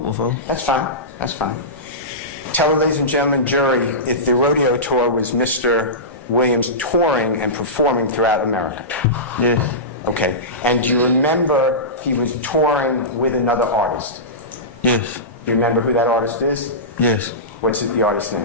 before. That's fine. That's fine. Tell the ladies and gentlemen, jury, if the rodeo tour was Mr. Williams touring and performing throughout America. Yes. Okay. And do you remember he was touring with another artist? Yes. Do you remember who that artist is? Yes. What's the artist's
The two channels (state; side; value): normal; both; correlation -0.19